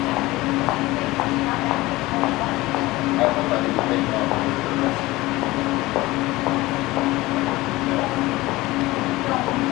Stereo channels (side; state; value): right; quieter; 19.4 dB